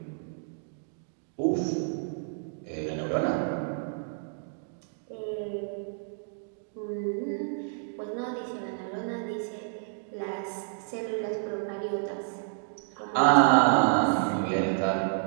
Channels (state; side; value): silent; left; digital silence